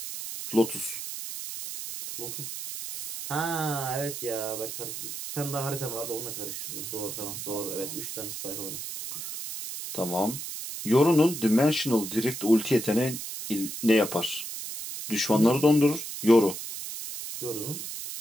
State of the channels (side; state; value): right; noise; hiss, 7 dB below the sound